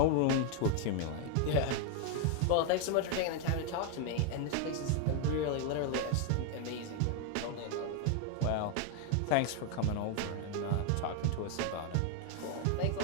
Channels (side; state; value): both; different; correlation 0.00